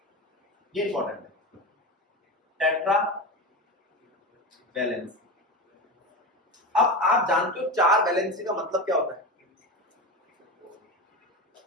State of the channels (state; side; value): normal; both; correlation 0.23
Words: ये इंपॉर्टेंट है, टेट्रा वैलेंसी। अब आप जानते हो 4 वैलेंसी का मतलब क्या होता है?